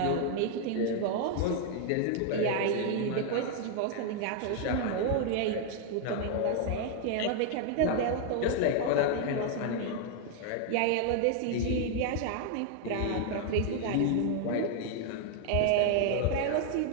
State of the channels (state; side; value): different; both; correlation 0.00